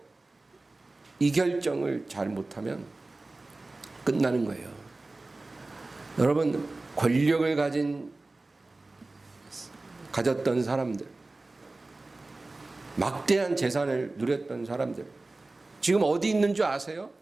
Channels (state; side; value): quieter; left; 3.2 dB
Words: 이 결정을 잘못하면 끝나는 거예요. 여러분, 권력을 가졌던 사람들, 막대한 재산을 누렸던 사람들, 지금 어디 있는 줄 아세요?